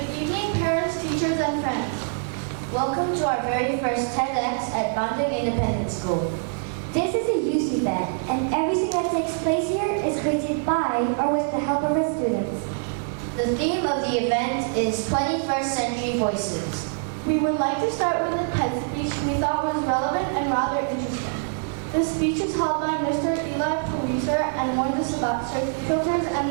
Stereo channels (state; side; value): silent; left; digital silence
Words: Good evening, parents, teachers, and friends. Welcome to our very first TEDx at Bandung Independent School. This is a youth event, and everything that takes place here is created by or with the help of our students. The theme of the event is 21st Century Voices. We would like to start with a TED speech we thought was relevant and rather interesting. This speech is held by Mr. Eli Pariser and warns us about search filters and